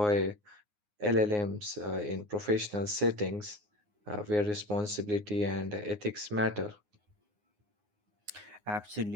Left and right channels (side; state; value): left; late; 9.6 ms